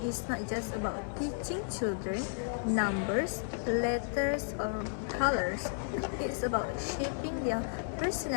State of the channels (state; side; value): silent; right; 56 dB below the other